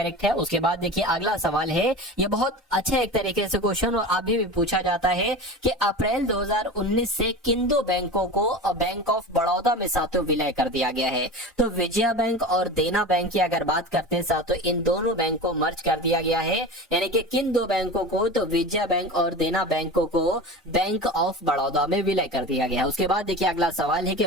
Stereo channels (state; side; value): normal; both; correlation 0.31